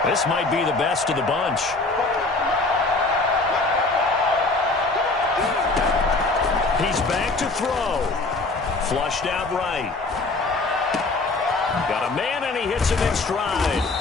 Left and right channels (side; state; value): right; quieter; 3.4 dB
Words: This might be the best of the bunch. He's back to throw. Flushed out right. Got a man, and he hits him in stride.